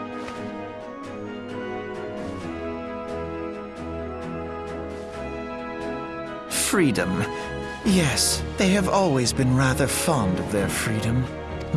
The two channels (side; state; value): both; identical; correlation 1.00